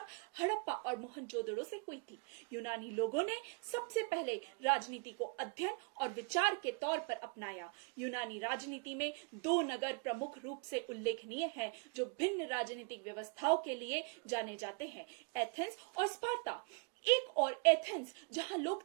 हड़प्पा और मोहनजोदड़ो से हुई थी। यूनानी लोगों ने सबसे पहले राजनीति को अध्ययन और विचार के तौर पर अपनाया। यूनानी राजनीति में दो नगर प्रमुख रूप से उल्लेखनीय हैं जो भिन्न राजनीतिक व्यवस्थाओं के लिए जाने जाते हैं, एथेंस और स्पार्ता। एक और एथेंस जहां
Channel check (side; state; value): left; quieter; 36.2 dB